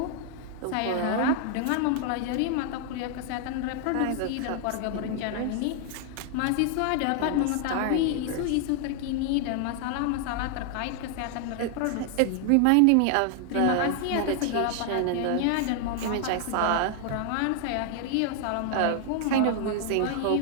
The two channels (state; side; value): different; both; correlation 0.00